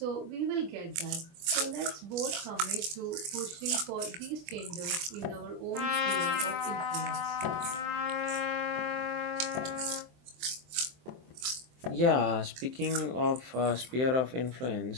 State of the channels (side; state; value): left; late; 23 ms